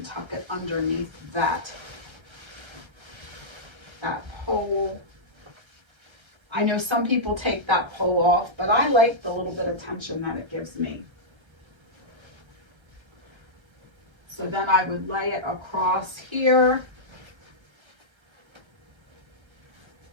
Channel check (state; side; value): late; left; 1.3 ms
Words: tuck it underneath that pole. I know some people take that pole off, but I like the little bit of tension that it gives me. So then I would lay it across here,